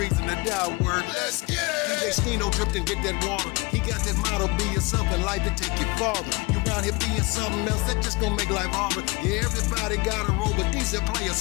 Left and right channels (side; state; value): right; quieter; 26.0 dB